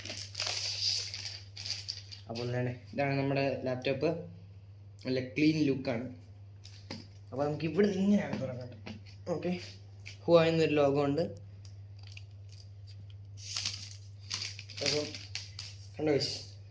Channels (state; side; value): identical; both; correlation 1.00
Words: അപ്പോൾ ഇതാണ് നമ്മുടെ ലാപ്ടോപ്പ്. നല്ല ക്ലീൻ ലുക്കാണ്. അപ്പോൾ നമുക്ക് ഇവിടെ ഇങ്ങനെയാണ് തുറക്കേണ്ടത്. ഓക്കെ, ഹുവായി എന്നൊരു ലോഗോ ഉണ്ട്. അപ്പം കണ്ടോ,